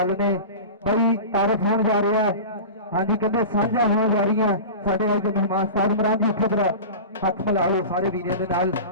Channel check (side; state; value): both; inverted; correlation -0.32